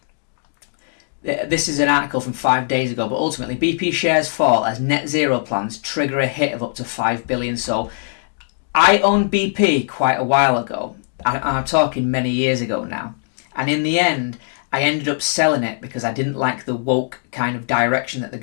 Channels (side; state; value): right; silent; digital silence